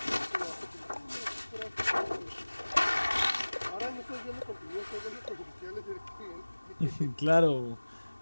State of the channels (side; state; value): both; inverted; correlation -1.00